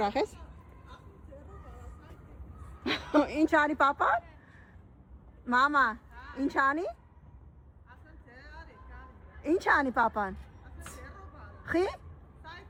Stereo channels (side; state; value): both; identical; correlation 1.00